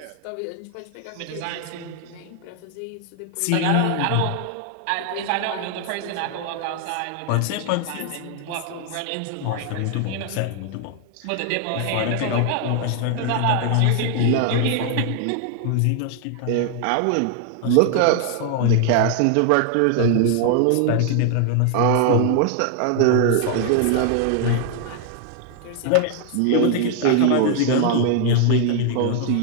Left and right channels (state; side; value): different; both; correlation 0.00